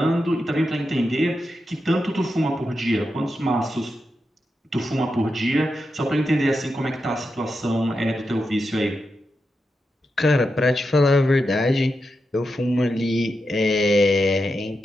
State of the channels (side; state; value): both; normal; correlation 0.88